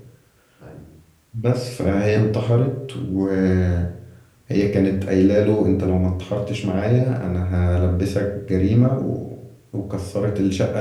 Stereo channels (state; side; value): identical; both; correlation 1.00